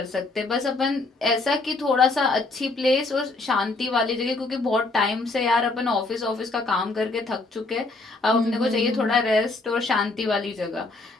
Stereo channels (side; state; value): right; quieter; 3.3 dB